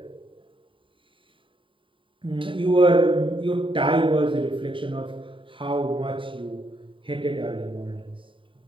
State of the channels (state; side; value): late; left; 0.25 ms